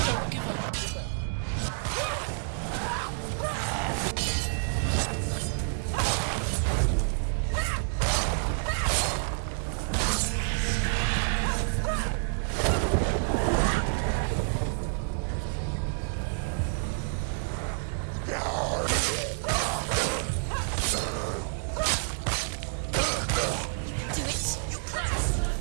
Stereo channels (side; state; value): left; silent; digital silence